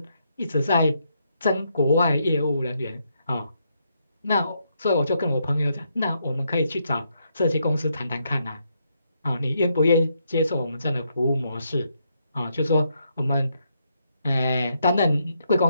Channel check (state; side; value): inverted; both; correlation -0.78